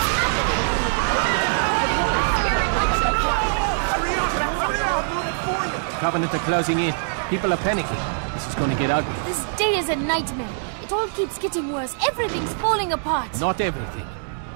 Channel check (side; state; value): left; silent; digital silence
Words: Hurry up! I'll do it for you! Covenant are closing in. People are panicking. This is going to get ugly. This day is a nightmare. It all keeps getting worse. Everything's falling apart. Not everything.